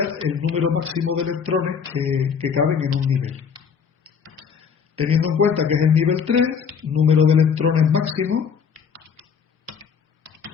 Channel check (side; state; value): right; quieter; 6.7 dB